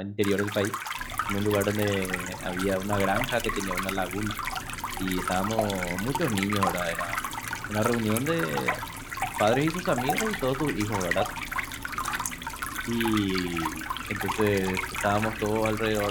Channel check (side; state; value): both; identical; correlation 1.00